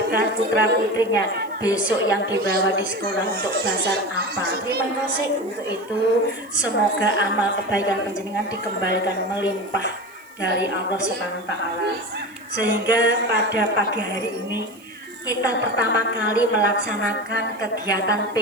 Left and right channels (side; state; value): right; noise; hiss, 29 dB below the sound